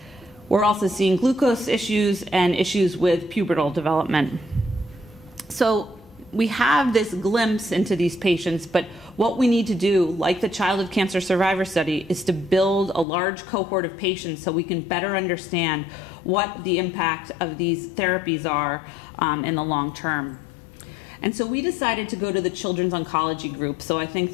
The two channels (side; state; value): right; drops out; at 13.1 s